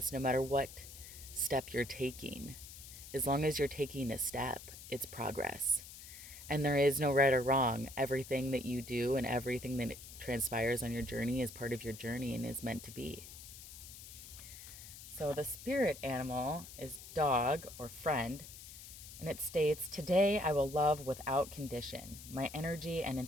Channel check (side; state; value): left; noise; hiss, 14 dB below the sound